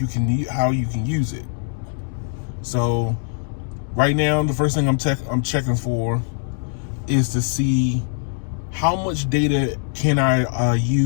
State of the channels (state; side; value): silent; right; 64 dB below the other